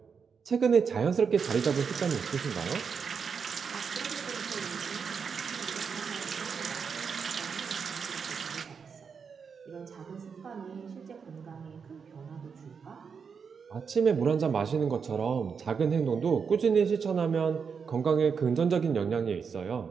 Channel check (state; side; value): quieter; left; 6.1 dB